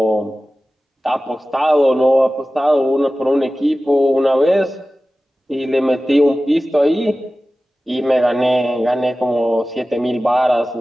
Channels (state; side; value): normal; both; correlation 0.95